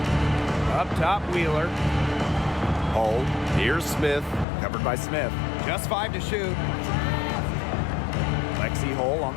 Up top, Wheeler. Hull. Here's Smith. Covered by Smith. Just 5 to shoot. Lexi Hull on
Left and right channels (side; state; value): right; drops out; at 4.5 s